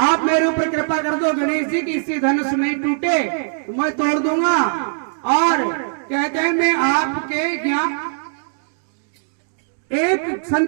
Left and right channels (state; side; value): silent; left; digital silence